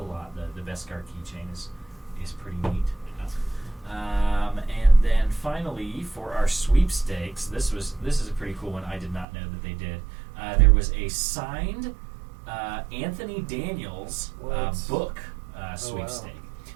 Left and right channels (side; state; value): left; drops out; at 9.2 s